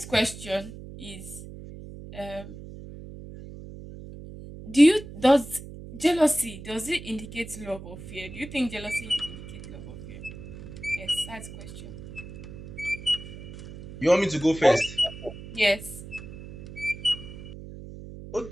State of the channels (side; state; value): right; noise; hum, 13 dB below the sound